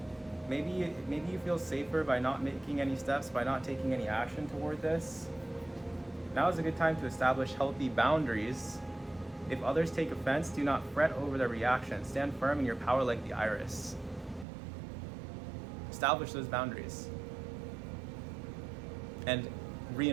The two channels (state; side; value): drops out; left; at 14.5 s